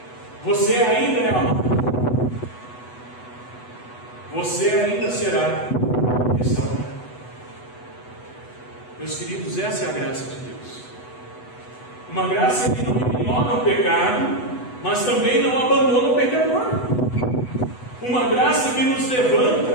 você ainda é amado, você ainda será restaurado. Meus queridos, essa é a graça de Deus, uma graça que não ignora o pecado, mas também não abandona o pecador, uma graça que nos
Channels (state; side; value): late; right; 8.1 ms